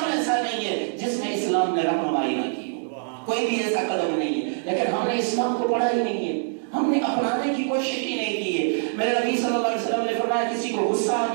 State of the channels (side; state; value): left; silent; digital silence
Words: ایسا نہیں ہے جس میں اسلام نے رہنمائی نہ کی ہو، کوئی بھی ایسا قدم نہیں ہے، لیکن ہم نے اسلام کو پڑھا ہی نہیں ہے، ہم نے اپنانے کی کوشش ہی نہیں کی ہے۔ میرے نبی صلی اللہ علیہ وسلم نے فرمایا کسی کو غصہ آ